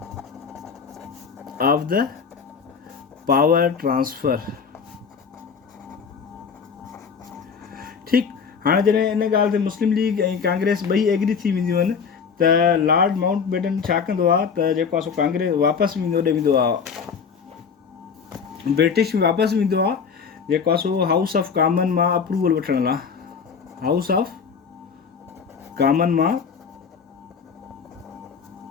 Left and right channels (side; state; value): right; quieter; 6.1 dB